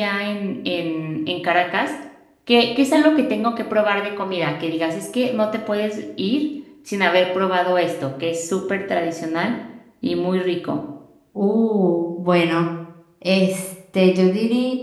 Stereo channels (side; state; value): both; identical; correlation 1.00